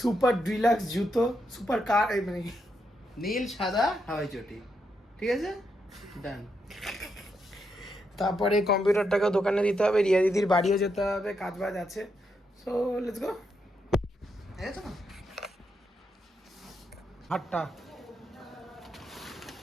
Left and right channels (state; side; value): normal; both; correlation 0.81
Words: ডিলাক্স জুতো, সুপার কার, মানে নীল সাদা হাওয়াই চটি, ঠিক আছে, ডান। তারপরে কম্পিউটারটাকে দোকানে দিতে হবে, রিয়া দিদির বাড়িও যেতে হবে, কাজ বাজ আছে। So let's go. হাটটা